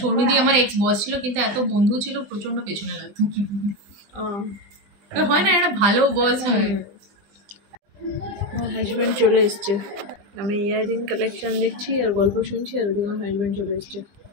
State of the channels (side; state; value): left; late; 20 ms